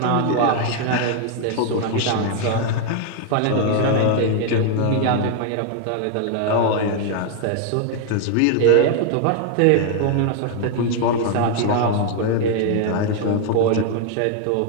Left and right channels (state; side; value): different; both; correlation 0.00